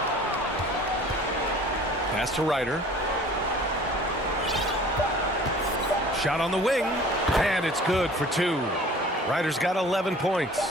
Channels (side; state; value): both; normal; correlation 0.47